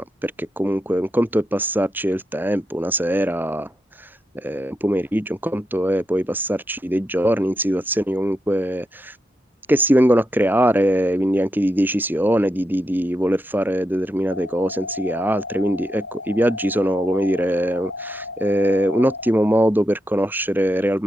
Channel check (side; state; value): both; normal; correlation 0.85